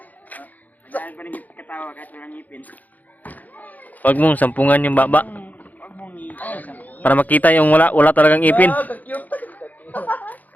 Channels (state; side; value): late; right; 0.081 ms